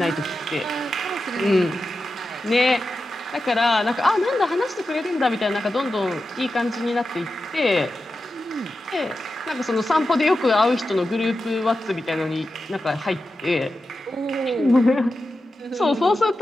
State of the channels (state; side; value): normal; both; correlation 0.91